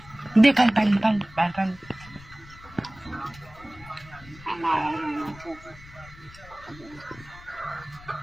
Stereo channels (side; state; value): left; noise; rumble, 20 dB below the sound